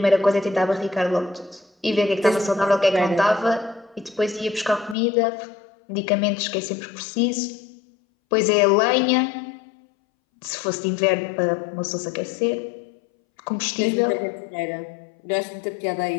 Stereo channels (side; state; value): right; drops out; at 5.0 s